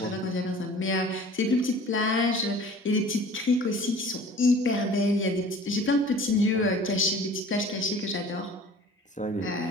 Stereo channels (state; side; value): normal; both; correlation 0.45